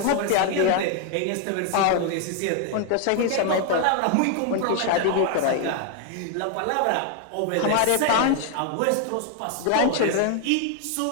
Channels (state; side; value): different; both; correlation 0.00